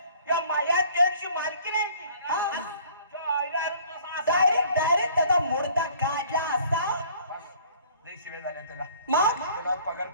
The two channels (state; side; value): inverted; both; correlation -0.54